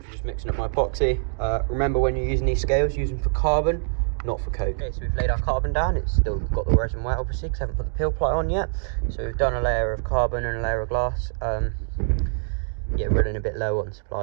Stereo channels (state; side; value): silent; left; digital silence